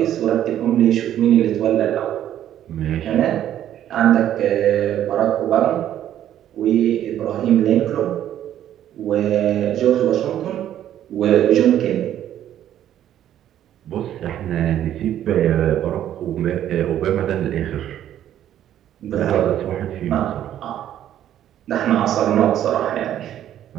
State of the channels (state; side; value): quieter; left; 11.3 dB